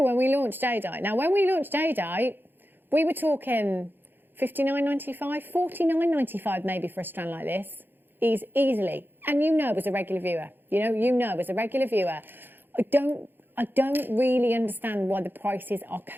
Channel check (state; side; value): late; left; 0.096 ms